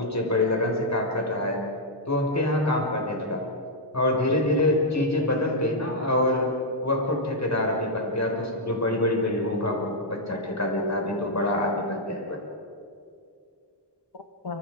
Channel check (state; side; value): normal; both; correlation -0.05